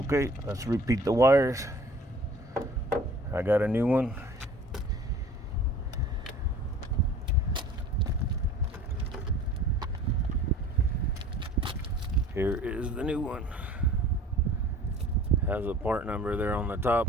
let's repeat the wires. I got a new one. Here is the new one. Has a part number there on the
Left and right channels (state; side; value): normal; both; correlation 0.47